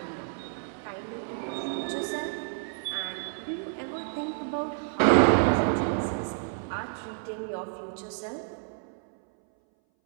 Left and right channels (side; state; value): left; silent; 58 dB below the other